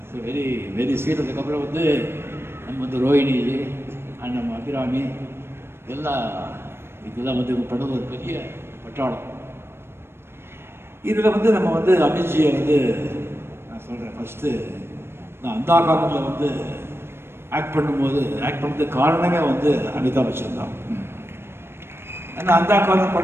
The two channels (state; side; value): late; left; 0.12 ms